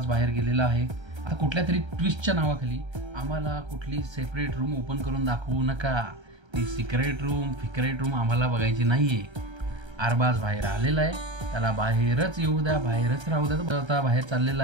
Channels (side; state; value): left; late; 1.3 ms